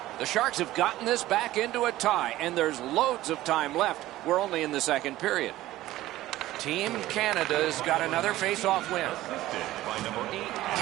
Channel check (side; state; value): left; quieter; 15.8 dB